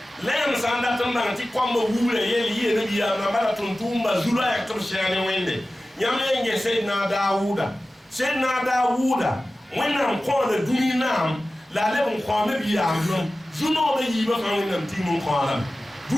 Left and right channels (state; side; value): normal; both; correlation 0.95